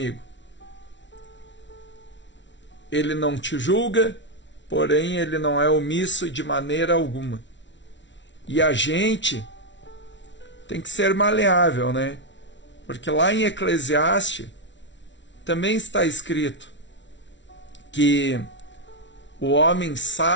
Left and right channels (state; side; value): late; right; 0.53 ms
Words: Ele não te julga, porém ele não é omisso de maneira alguma. E a gente tem que ser maleável, né? Porque lá em Eclesiastes também está escrito que o homem